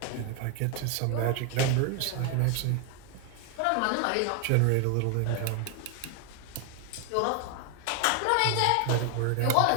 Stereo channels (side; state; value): both; different; correlation 0.01